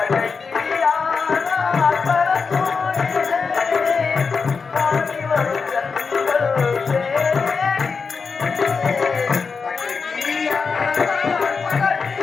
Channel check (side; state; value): right; quieter; 5.1 dB